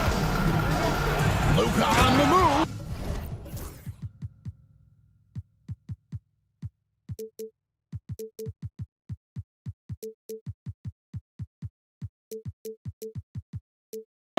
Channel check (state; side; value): identical; both; correlation 1.00